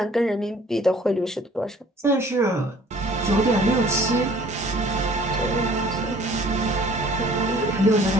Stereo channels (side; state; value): both; normal; correlation 0.53